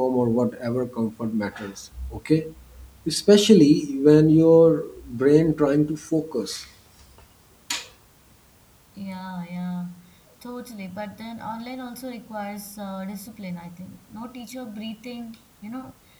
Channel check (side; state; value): both; identical; correlation 1.00